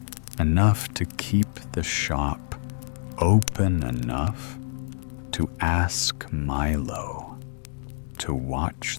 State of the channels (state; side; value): silent; right; digital silence